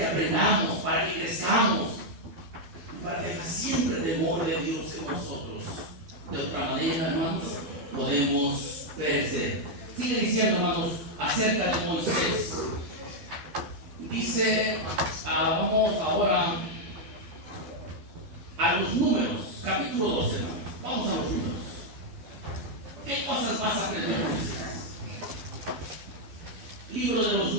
aprendamos, para que crezcamos, para que haya siempre temor de Dios en nosotros. De otra manera, hermanos, podemos perecer. Sigue diciendo, hermanos, acerca de Moisés. Dice, vamos ahora a los Números, capítulo 12, hermanos. Vamos a los Números. ¿Qué cosas más aprendemos? Libro de los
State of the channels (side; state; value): left; late; 12 ms